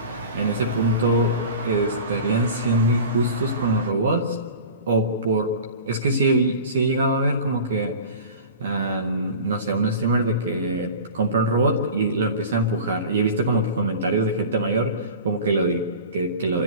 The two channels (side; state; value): both; inverted; correlation -0.36